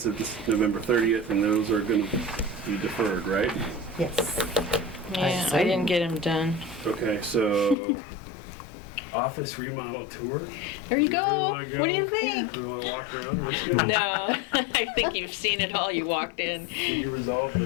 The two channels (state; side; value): drops out; right; at 7.8 s